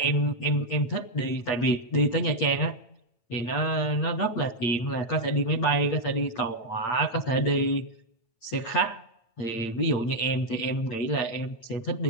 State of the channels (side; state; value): right; late; 8.8 ms